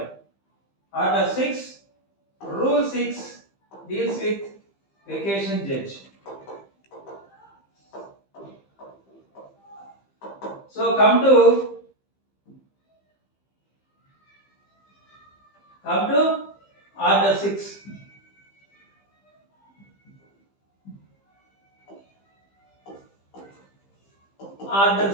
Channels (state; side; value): late; right; 15 ms